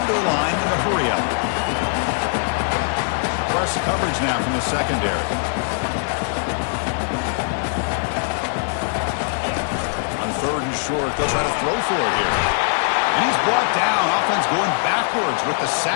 to the line in a hurry up. Press coverage now from the secondary. On 3rd and short, they'll try to throw for it here. And he's brought down. Offense going backwards with the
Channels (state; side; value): silent; right; 57 dB below the other